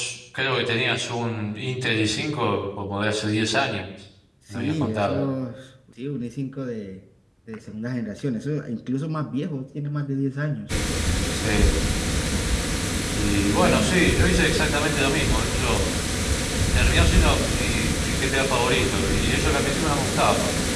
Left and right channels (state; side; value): identical; both; correlation 1.00